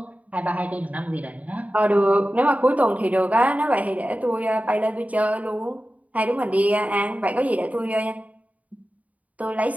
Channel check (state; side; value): late; left; 0.071 ms